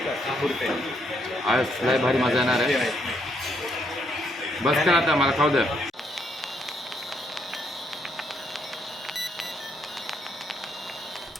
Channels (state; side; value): normal; both; correlation 0.74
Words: आज लय भारी मजा येणार आहे. बस कर आता, मला खाऊ द्या.